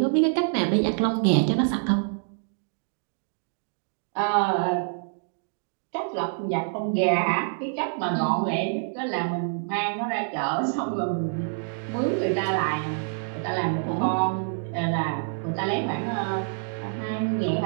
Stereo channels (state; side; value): silent; left; digital silence